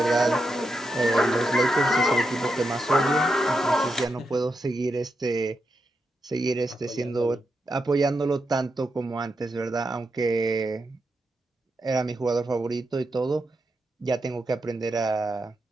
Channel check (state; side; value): normal; both; correlation 0.85